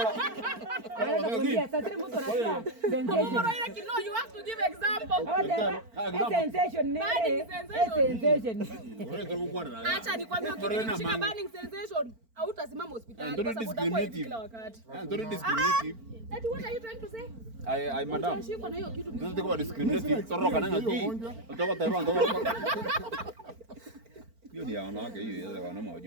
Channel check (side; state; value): left; late; 4.4 ms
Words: Sasa tena mtu anasema Maroira kino you have to give example. Sensation. Acha nikwambie ukishika burning sensation hautasimama hospitali kwa sababu utakuwa hivi kila wakati. Don't discriminate. That what are you trying to say? I madam. Unashikwa na hiyo kitu. Don't think about discriminating. Toroka nanga ki. Utoko Taiwan ndo. Hiyo ni wanawake hiyo ya wanaume